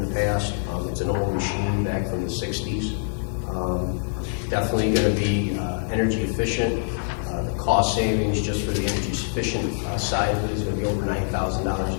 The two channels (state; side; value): silent; right; digital silence